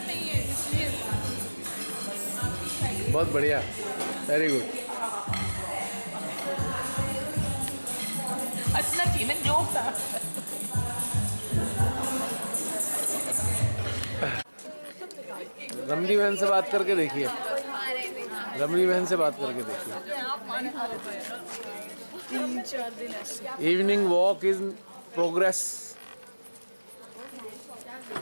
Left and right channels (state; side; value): inverted; both; correlation -1.00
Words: है इसलिए। बहुत बढ़िया, वेरी गुड। हंसना चाहिए ना, जोक था। रमणी बहन से बात करके देखिए, रमणी बहन से बात करके देखिए। 3-4 दिन ऐसे। Evening walk is progress.